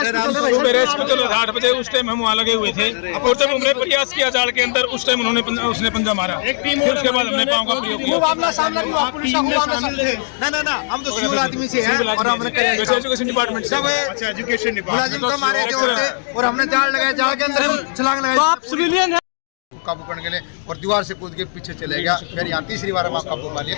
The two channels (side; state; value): right; silent; digital silence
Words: सुबह रेस्क्यू चलो 8 बजे उस टाइम हम वहाँ लगे हुए थे और जब हमने प्रयास किया जाल के अंदर उस टाइम उसने पंजा मारा। फिर उसके बाद हमने पाँव का प्रयोग किया। ना हम तो सिविल आदमी से हैं और हमने एजुकेशन डिपार्टमेंट से एजुकेशन मुलाजिम तो हमारे और हमने जाल लगाया। जाल के अंदर छलांग लगाई। आप सिविलियन हैं? काबू करने के लिए और दीवार से कूद के पीछे चले गया। फिर यहाँ तीसरी बार हम काबू पा लिया।